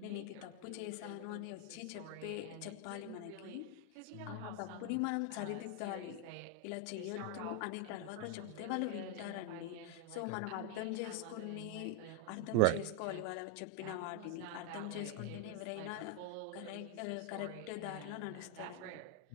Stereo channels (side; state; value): both; different; correlation 0.01